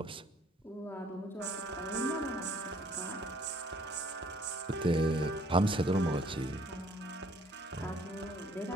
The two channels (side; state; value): both; normal; correlation 0.60